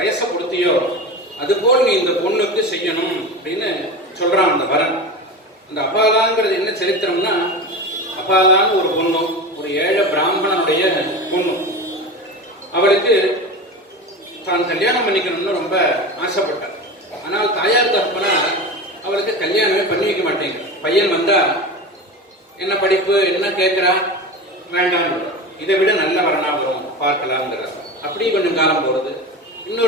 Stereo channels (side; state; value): both; normal; correlation 0.27